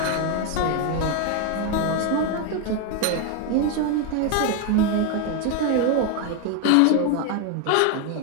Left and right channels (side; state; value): both; different; correlation 0.01